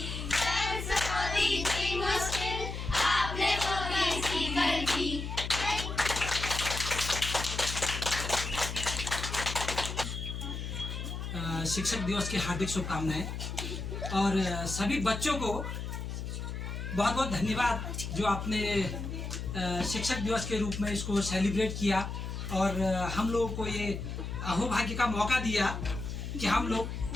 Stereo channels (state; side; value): noise; left; hum, 5 dB below the sound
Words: शिक्षक दिवस की हार्दिक शुभकामनाएं और सभी बच्चों को बहुत बहुत धन्यवाद जो आपने शिक्षक दिवस के रूप में इसको सेलिब्रेट किया और हम लोगों को ये अहोभाग्य का मौका दिया कि हम